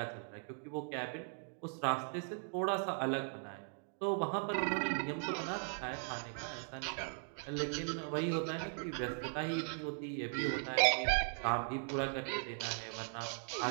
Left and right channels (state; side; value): silent; left; 52 dB below the other